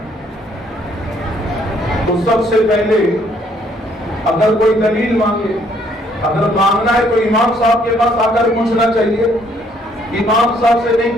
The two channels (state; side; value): normal; both; correlation 0.66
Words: تو سب سے پہلے اگر کوئی دلیل مانگے، اگر مانگنا ہے تو امام صاحب کے پاس آ کر پوچھنا چاہیے۔ امام صاحب سے